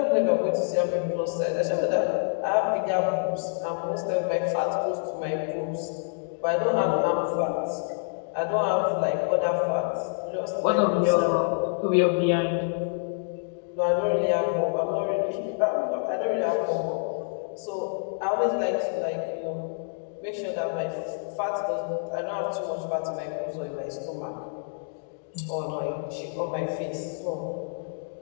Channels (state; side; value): silent; right; digital silence